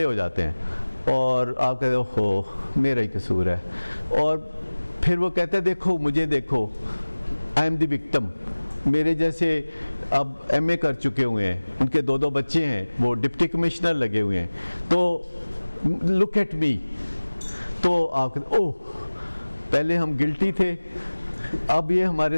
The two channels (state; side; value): inverted; both; correlation -1.00